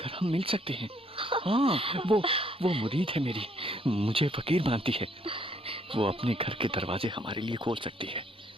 हम मिल सकते हैं। हाँ, वो मुरीद है मेरी, मुझे फकीर मानती है। वो अपने घर के दरवाजे हमारे लिए खोल सकती है।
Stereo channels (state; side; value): normal; both; correlation 0.67